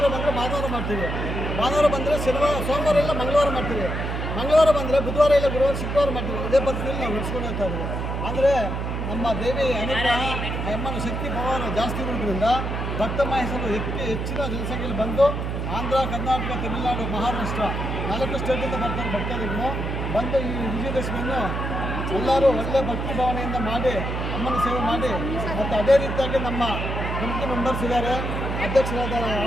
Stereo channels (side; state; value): right; noise; hum, 3 dB below the sound